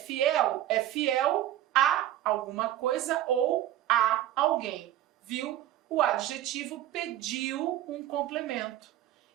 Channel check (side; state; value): left; quieter; 13.0 dB